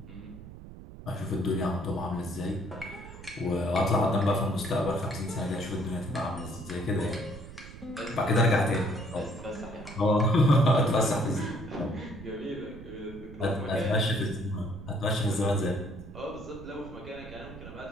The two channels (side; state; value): right; noise; rumble, 14 dB below the sound